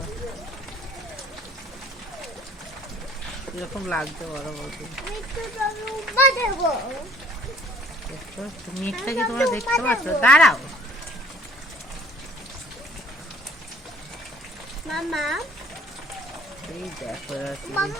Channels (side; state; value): both; normal; correlation 0.53